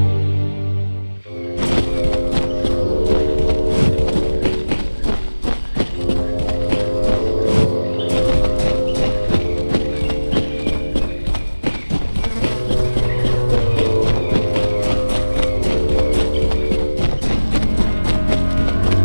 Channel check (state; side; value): inverted; both; correlation -1.00